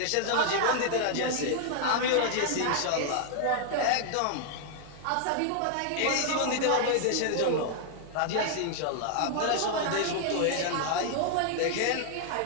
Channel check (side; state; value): both; different; correlation 0.00